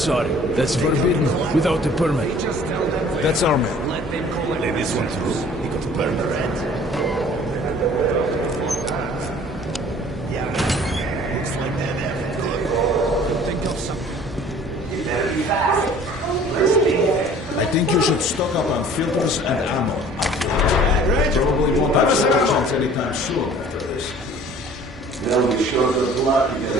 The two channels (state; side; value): normal; both; correlation 0.50